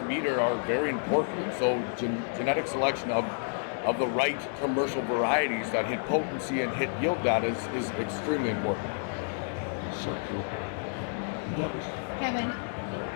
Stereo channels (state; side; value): silent; right; digital silence